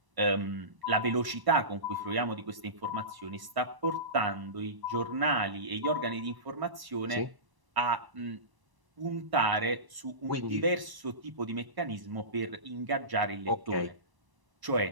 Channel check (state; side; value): late; left; 1.0 ms